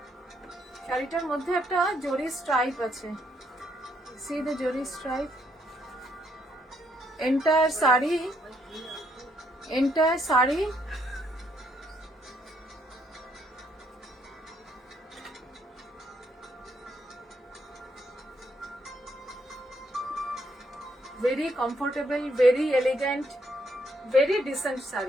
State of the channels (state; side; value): normal; both; correlation 0.73